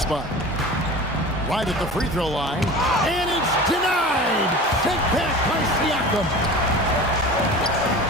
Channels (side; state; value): both; normal; correlation 0.36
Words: Right at the free throw line, and it's denied. Sent back by Siakam.